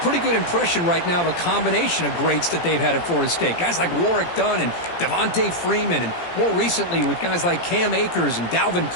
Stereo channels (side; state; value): right; late; 17 ms